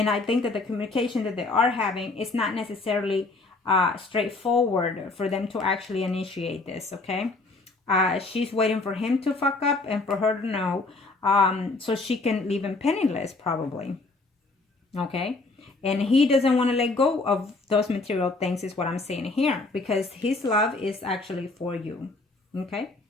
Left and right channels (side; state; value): right; quieter; 3.4 dB